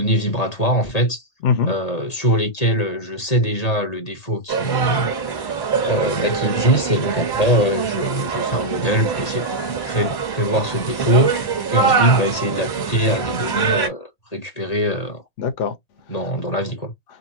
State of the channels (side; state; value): right; late; 1.8 ms